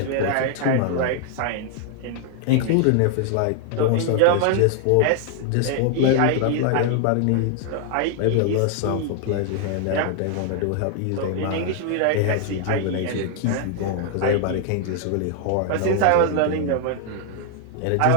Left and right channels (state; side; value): different; both; correlation 0.00